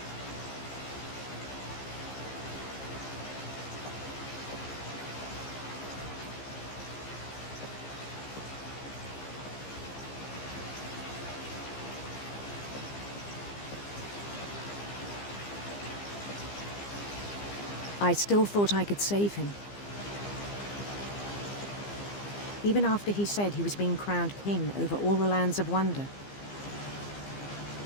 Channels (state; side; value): late; right; 15 ms